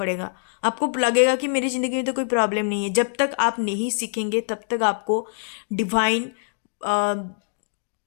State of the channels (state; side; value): silent; right; digital silence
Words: आपको लगेगा कि मेरी ज़िंदगी में तो कोई प्रॉब्लम नहीं है। जब तक आप नहीं सीखेंगे तब तक आपको डिवाइन